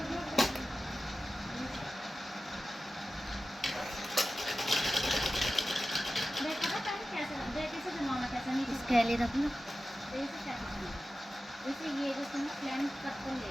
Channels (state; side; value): normal; both; correlation 0.94